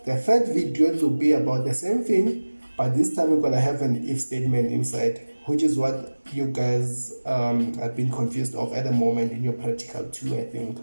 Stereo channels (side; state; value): both; inverted; correlation -1.00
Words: the third video will be about the same thing, but this time we're gonna have an if statement inside, which is what you guys have been confused of at the moment in your practical too, I think.